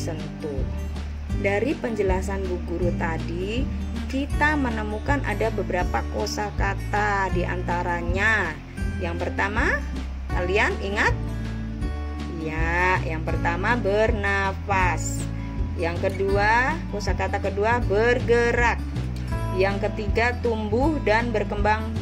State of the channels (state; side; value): identical; both; correlation 1.00